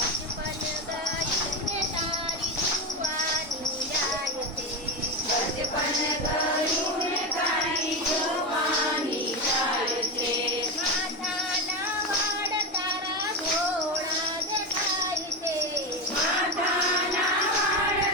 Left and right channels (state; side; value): normal; both; correlation 0.16